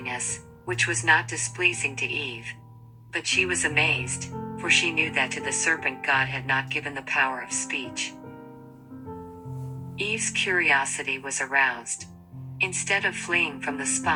which was not displeasing to Eve. But she was amazed, for she knew that to the serpent God had not given the power of speech. Eve's curiosity was aroused. Instead of fleeing from the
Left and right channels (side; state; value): both; identical; correlation 1.00